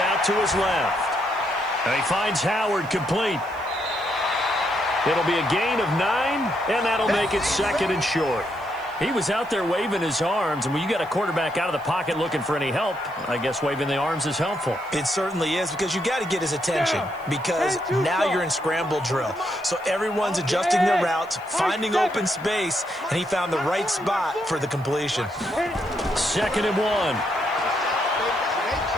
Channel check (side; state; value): right; noise; hiss, 27 dB below the sound